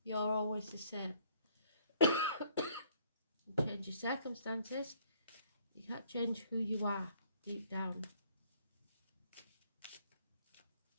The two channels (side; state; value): both; inverted; correlation -0.62